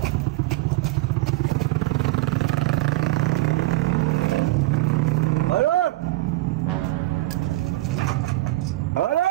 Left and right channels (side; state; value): left; quieter; 18.8 dB